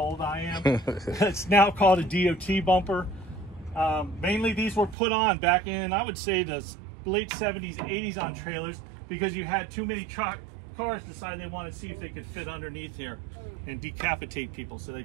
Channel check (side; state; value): left; drops out; at 5.0 s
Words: old I am. It's now called a DOT bumper. Mainly these were put on back in, I would say, the late 70s, 80s on trailers because you had too many cars decide they want to see if they could fit underneath here and decapitate people. So they